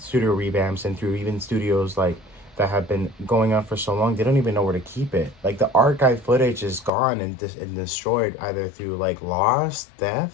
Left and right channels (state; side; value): drops out; right; at 6.9 s